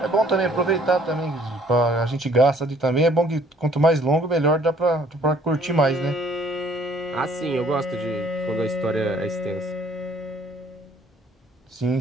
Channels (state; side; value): normal; both; correlation 0.60